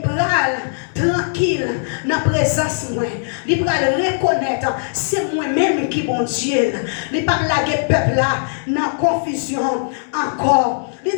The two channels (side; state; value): right; silent; digital silence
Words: pral tranquille dans la présence moi. Il pral reconnaître c'est moi-même qui bon Dieu. Il pas la peuple là dans confusion encore.